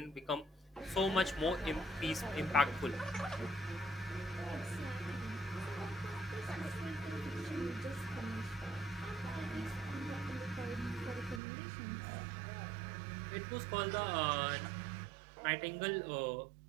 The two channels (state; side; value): drops out; left; at 11.4 s